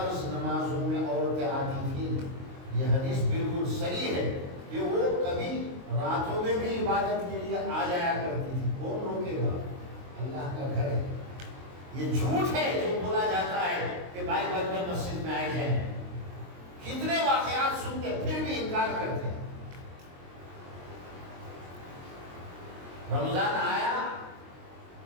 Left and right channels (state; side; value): late; left; 23 ms